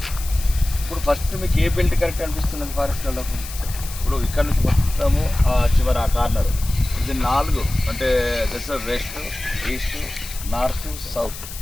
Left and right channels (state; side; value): noise; left; hiss, 12 dB below the sound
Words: ఇప్పుడు ఫస్ట్ మీకు ఏ బెల్ట్ కరెక్ట్ అనిపిస్తుంది ఫారెస్ట్ వాళ్ళకు? ఇప్పుడు ఇక్కడ నుంచి మొత్తము చివరి ఆ కార్నర్ ఇది 4 అంటే దశ వెస్ట్, ఈస్ట్, నార్త్, సౌత్.